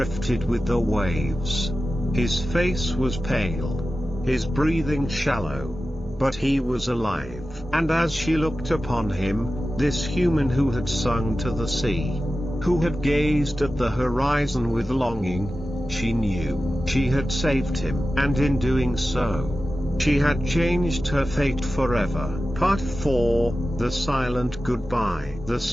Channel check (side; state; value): both; normal; correlation 0.94